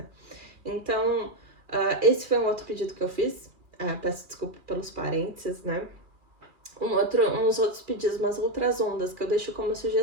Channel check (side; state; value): left; late; 2.4 ms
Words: Então, esse foi um outro pedido que eu fiz. Peço desculpa pelos parênteses, né? Uns outros pedidos, umas outras ondas que eu deixo como